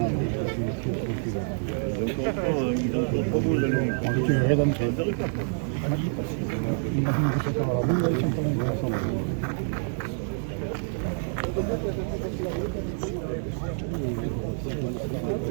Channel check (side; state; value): left; silent; digital silence